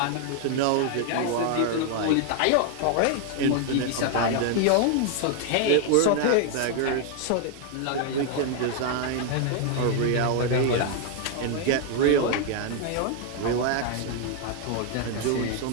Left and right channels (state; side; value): different; both; correlation 0.00